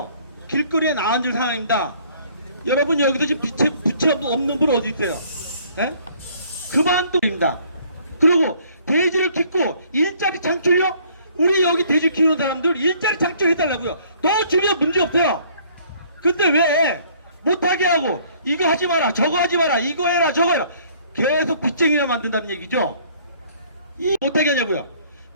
길거리에 나앉을 상황입니다. 여러분 여기서 지금 부채 없는 분 어디 있어요? 그만둡니다. 그리고 돼지를 키고 일자리 창출요? 우리 여기 돼지 키우는 사람들 일자리 창출해달라고요. 너 주면 문제 없어요. 근데 왜 못하게 하고 이거 하지 마라 저거 하지 마라 이거 해라 저거 해라 계속 빚쟁이를 만든다는 얘기죠. 이 못하게 하냐고요.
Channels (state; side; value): inverted; both; correlation -0.59